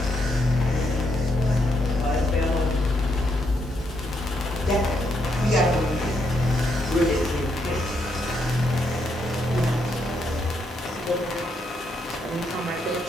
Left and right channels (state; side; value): normal; both; correlation 0.77